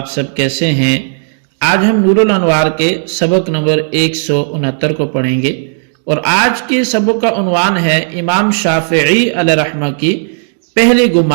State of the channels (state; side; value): silent; left; digital silence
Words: سب کیسے ہیں؟ آج ہم نور الانوار کے سبق نمبر 169 کو پڑھیں گے، اور آج کے سبق کا عنوان ہے امام شافعی علیہ رحمہ کی پہلے